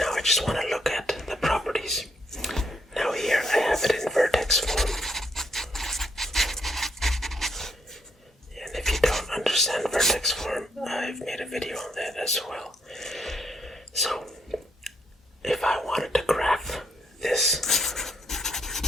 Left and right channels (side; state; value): both; normal; correlation 0.74